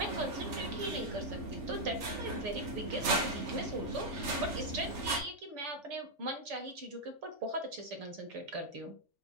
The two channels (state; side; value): late; left; 3.4 ms